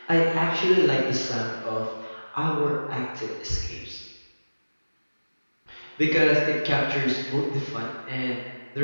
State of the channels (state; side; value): inverted; both; correlation -1.00